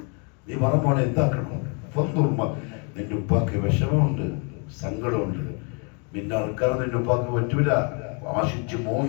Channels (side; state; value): right; quieter; 36.1 dB